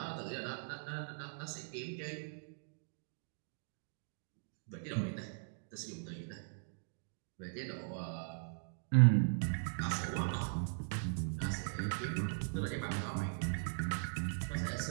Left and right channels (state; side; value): silent; left; digital silence